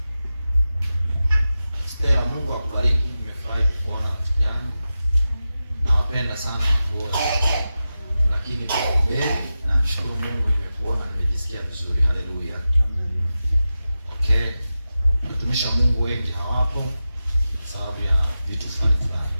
Stella, Mungu akubariki. Nimefurahi kuona rafiki yangu. Nawapenda sana wote. Lakini leo namshukuru Mungu nimekuona, nimejisikia vizuri. Haleluya. Okay. Mtumishi wa Mungu wengi hawapo sababu ya vitu fulani.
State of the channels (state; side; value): inverted; both; correlation -0.93